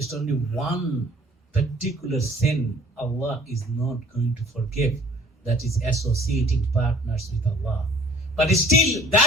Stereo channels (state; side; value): normal; both; correlation 0.54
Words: only one particular sin Allah is not going to forgive. That is associating partners with Allah. But still,